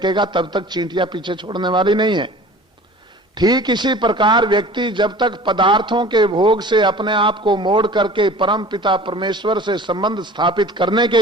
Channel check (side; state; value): both; normal; correlation 0.43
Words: तब तक चींटियां पीछे छोड़ने वाली नहीं है। ठीक इसी प्रकार व्यक्ति जब तक पदार्थों के भोग से अपने आप को मोड़ करके परम पिता परमेश्वर से संबंध स्थापित करने